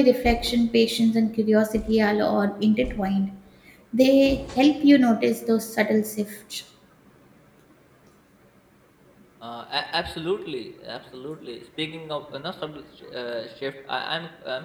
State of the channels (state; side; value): identical; both; correlation 1.00